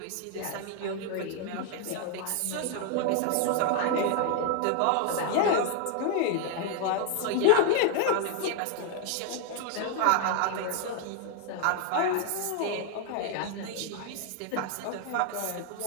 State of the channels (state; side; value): different; both; correlation 0.00